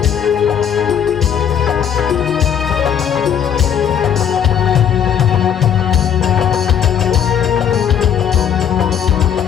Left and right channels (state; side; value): quieter; right; 8.6 dB